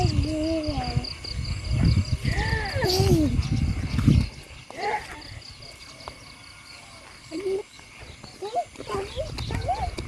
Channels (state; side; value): identical; both; correlation 1.00